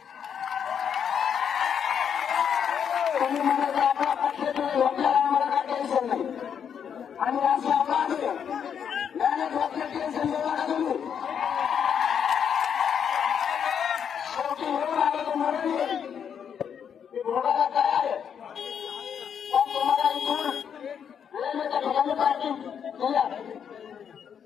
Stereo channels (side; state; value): right; quieter; 7.9 dB